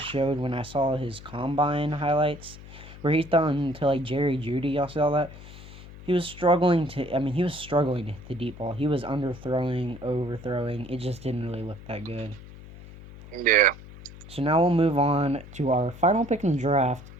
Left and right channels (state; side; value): noise; left; hum, 16 dB below the sound